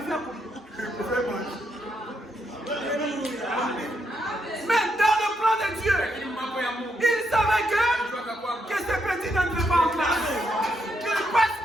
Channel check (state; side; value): normal; both; correlation 0.79